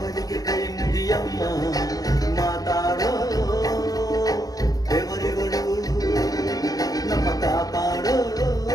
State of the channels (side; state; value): right; late; 0.18 ms